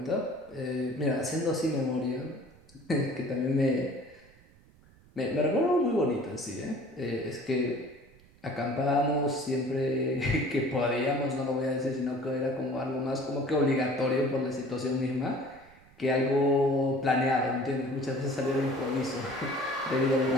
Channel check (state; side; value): noise; right; rumble, 27 dB below the sound